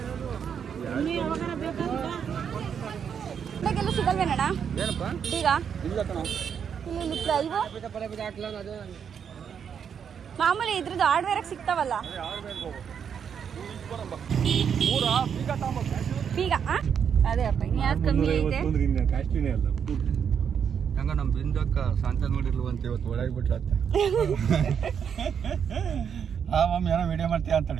ಇವಾಗೆಲ್ಲ ಸಿಗಲ್ವೇನಣ್ಣ ಏನಪ್ಪ ಬೀಗ? ಇಲ್ಲ ಕಣ. ಇಲ್ಲಿ ಇವು ಮಾಮೂಲಿ ಇದ್ರದ್ದು ಹಾರ್ಡ್ವೇರಾಗ ಸಿಗ್ತಾವಲ್ಲ ಬೀಗ. ಅದೇ ಅಪ್ಪ ಇನ್ನು ಯಾವ್ದು ಕಮ್ಮಿ ಐತೆ? ಹೆಂಗ ನಮ್ಮ ಬಿಂದಕ್ಕ ಶಾಂತ ನೋಡಿರ್ಲವಂತ ಇವತ್ತು ಒಳಗೆ ಬಿಟ್ರತ್ತ ಆ ಮಮ್ಮಿ ಏನೋ ವಿಡಿಯೋ ಮಾಡ್ತೀಯ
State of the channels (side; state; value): left; quieter; 7.5 dB